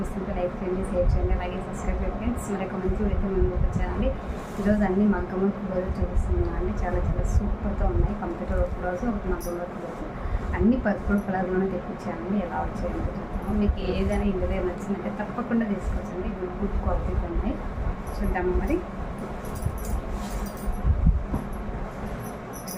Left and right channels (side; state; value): both; identical; correlation 1.00